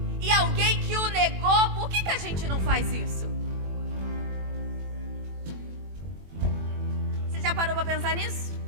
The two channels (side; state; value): left; late; 21 ms